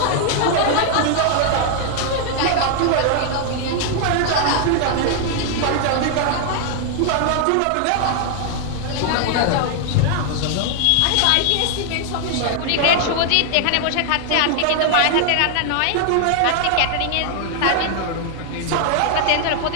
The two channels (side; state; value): both; different; correlation 0.00